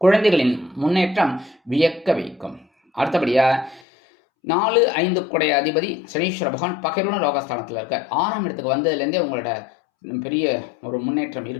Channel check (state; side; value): drops out; right; at 3.8 s